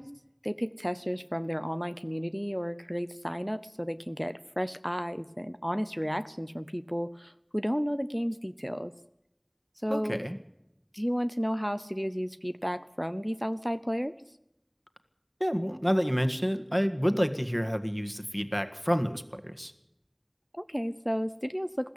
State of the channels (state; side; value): identical; both; correlation 1.00